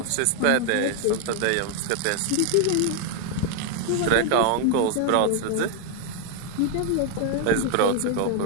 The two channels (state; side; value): different; both; correlation 0.00